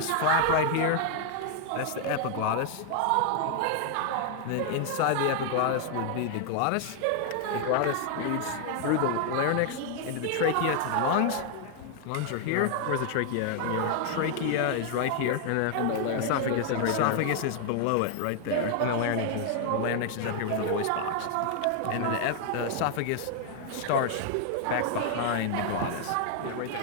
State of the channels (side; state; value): both; different; correlation 0.00